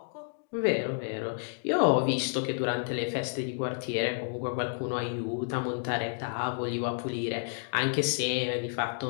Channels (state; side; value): silent; right; digital silence